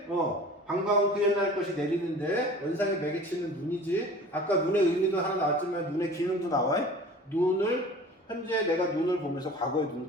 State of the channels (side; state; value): both; normal; correlation 0.42